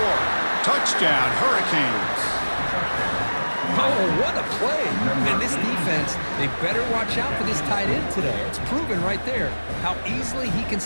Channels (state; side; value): inverted; both; correlation -1.00